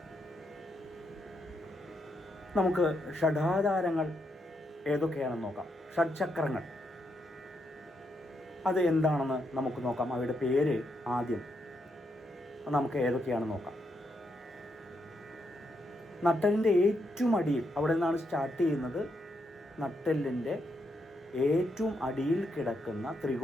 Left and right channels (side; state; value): both; normal; correlation 0.80